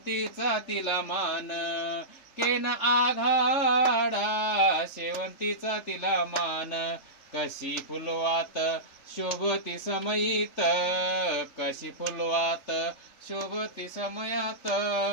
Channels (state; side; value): late; right; 3.3 ms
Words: तिला मान. केन आघाडा शेवंतीचा तिला मान. कशी फुलवात शोभती समयीत. कशी फुलवात शोभती समयात